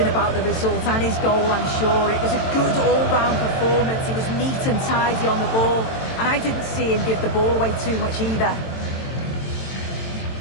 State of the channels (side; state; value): right; late; 22 ms